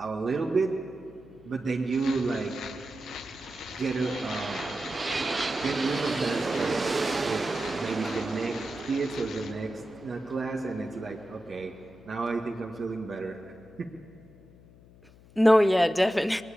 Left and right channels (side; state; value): left; noise; hum, 24 dB below the sound